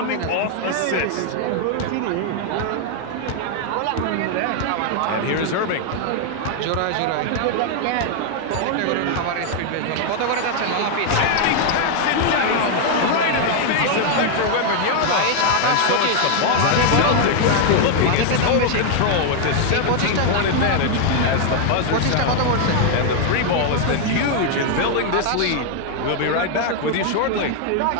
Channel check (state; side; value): different; both; correlation 0.00